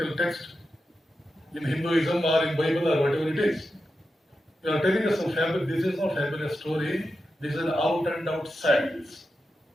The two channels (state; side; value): normal; both; correlation 0.90